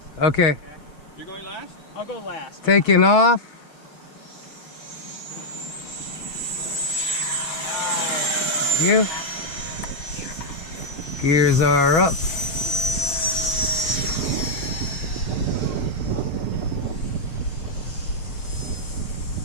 Okay. You're going last? I'll go last. Taking off. You. Gears are up.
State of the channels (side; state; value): right; late; 6.0 ms